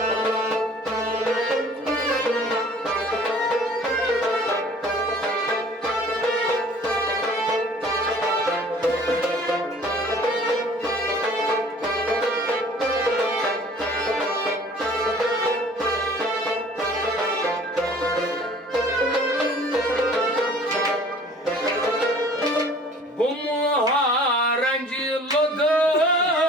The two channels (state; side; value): normal; both; correlation 0.50